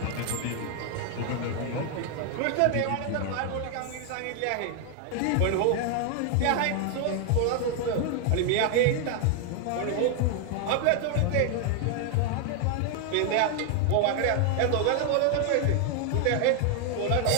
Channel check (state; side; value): different; both; correlation 0.00